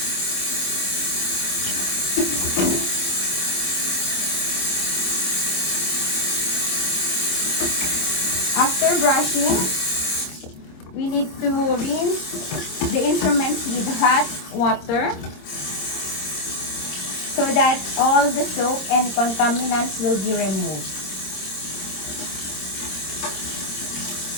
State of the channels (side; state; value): right; late; 26 ms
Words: After brushing, we need to rinse the instruments with hot water so that all the soap and contaminants will be removed.